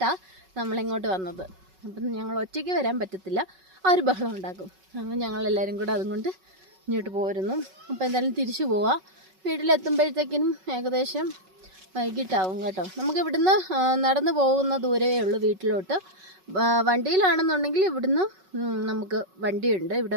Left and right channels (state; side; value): late; left; 5.3 ms